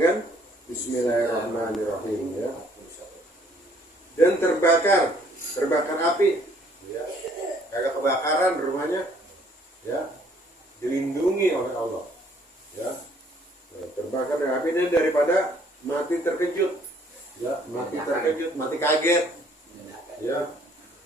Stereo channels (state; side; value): normal; both; correlation 0.62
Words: Bismillahirrahmanirrahim, ya. Dan terbakar api, ya, kagak kebakaran rumahnya, ya, dilindungi oleh Allah, ya. Terbakar dengan api dan daripada mati terkejut, ya, mati terkejut, mati kaget, ya.